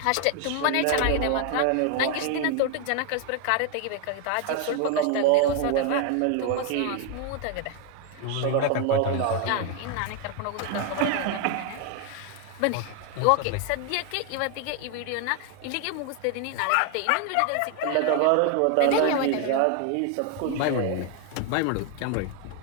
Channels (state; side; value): different; both; correlation 0.00